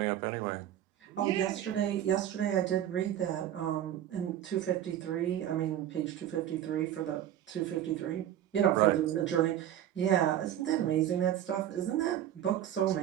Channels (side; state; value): left; quieter; 11.3 dB